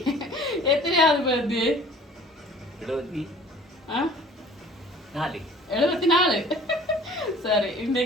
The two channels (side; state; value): both; normal; correlation 0.49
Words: எத்தனையாவது பர்த்டே? 74. சரி,